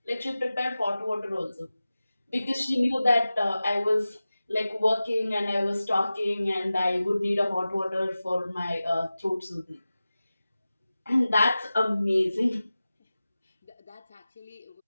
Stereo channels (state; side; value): inverted; both; correlation -0.96